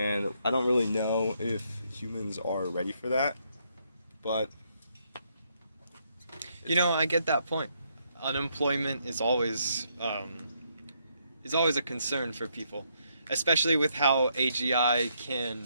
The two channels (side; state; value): both; inverted; correlation -0.74